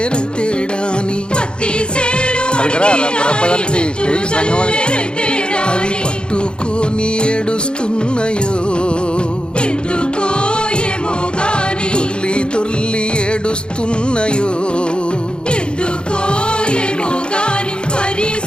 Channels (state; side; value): late; right; 0.052 ms